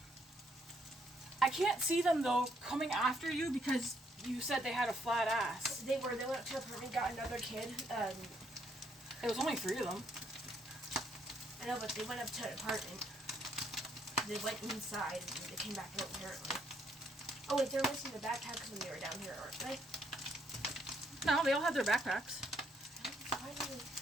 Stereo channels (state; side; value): normal; both; correlation 0.72